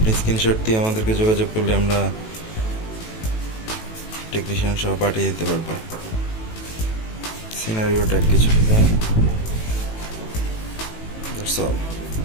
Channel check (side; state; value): right; late; 18 ms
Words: স্ক্রিনশট দিয়ে আমাদেরকে যোগাযোগ করলে আমরা টেকনিশিয়ান সহ পাঠিয়ে দিতে পারবো। সিনারিও ট্যাগ কিছু design. That's all,